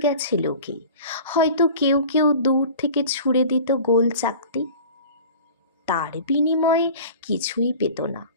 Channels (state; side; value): inverted; both; correlation -0.41